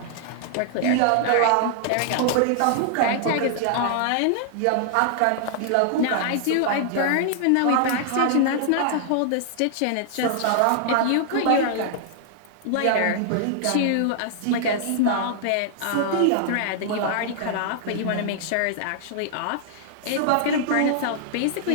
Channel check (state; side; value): different; both; correlation -0.01